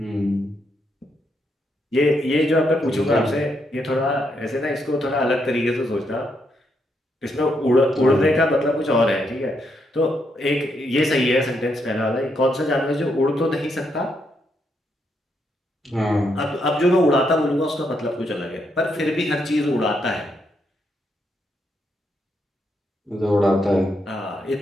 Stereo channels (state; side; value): normal; both; correlation 0.78